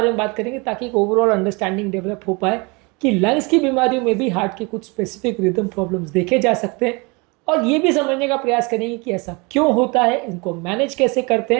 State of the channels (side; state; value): left; quieter; 28.4 dB